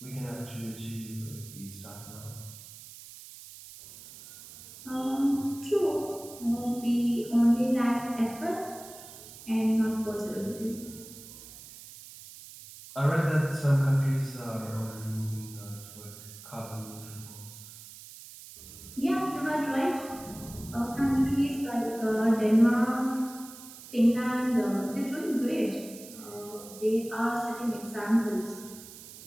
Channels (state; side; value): noise; right; hiss, 16 dB below the sound